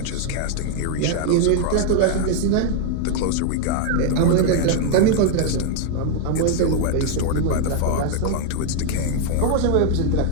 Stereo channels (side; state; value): both; different; correlation 0.00